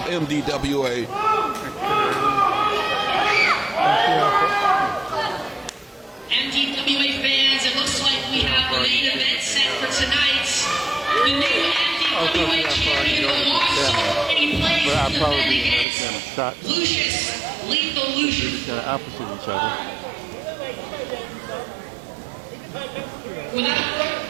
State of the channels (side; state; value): left; drops out; at 15.9 s